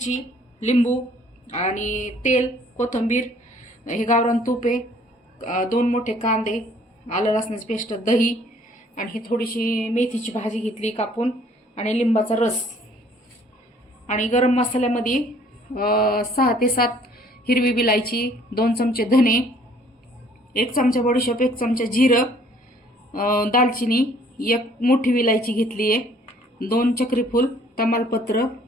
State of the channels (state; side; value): normal; both; correlation 0.59